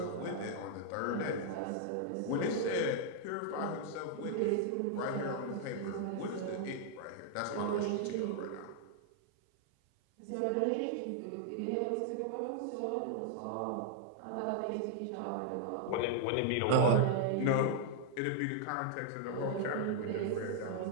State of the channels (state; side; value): different; both; correlation 0.00